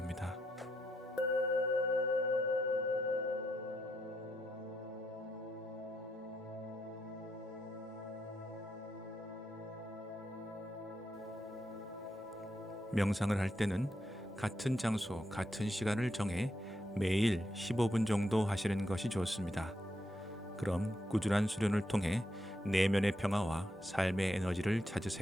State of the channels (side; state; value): both; normal; correlation 0.81